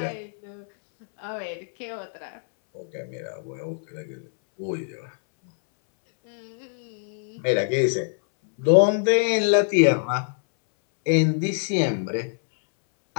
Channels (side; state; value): right; silent; 62 dB below the other